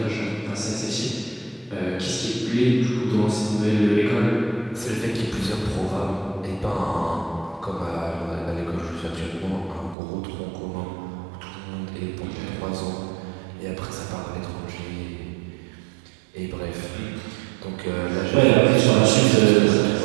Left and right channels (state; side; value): drops out; left; at 10.0 s